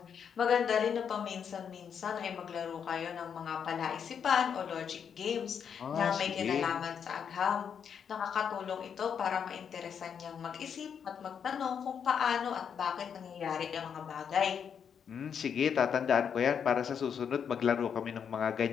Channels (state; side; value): quieter; right; 7.5 dB